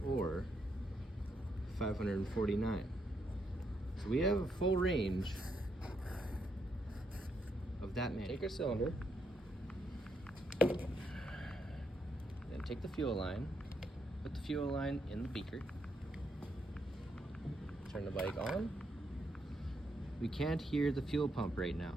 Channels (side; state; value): both; normal; correlation 0.78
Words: or 549. So we have a full range of that many. Take our cylinder, then take the fuel line, put the fuel line in the beaker, turn the bike on. We can't hear the fuel pump right